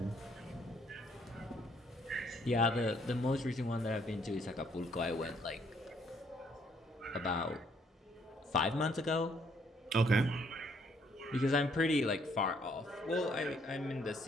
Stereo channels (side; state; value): both; normal; correlation 0.67